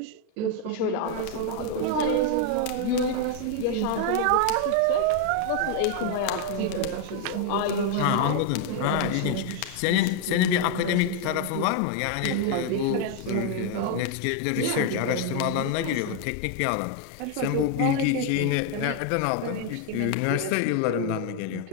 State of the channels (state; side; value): different; both; correlation 0.01